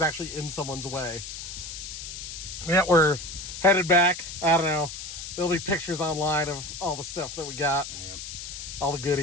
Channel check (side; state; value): left; noise; hiss, 9 dB below the sound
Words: actually in someone's way. Yeah, we're headed back. I don't know. There'll be pictures online of all the stuff that we got. Yep. All the